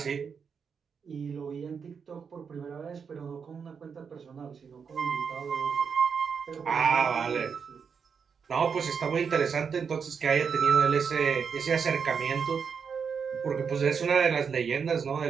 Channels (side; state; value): left; quieter; 6.3 dB